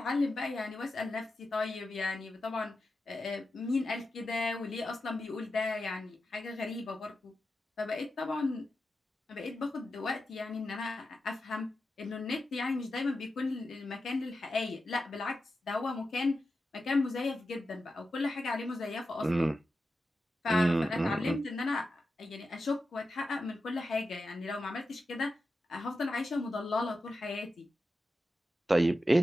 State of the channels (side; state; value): both; normal; correlation 0.91